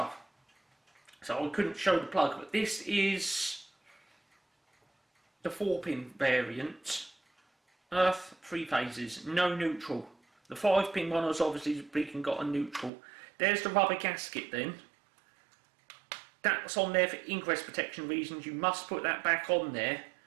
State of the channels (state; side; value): drops out; left; at 12.9 s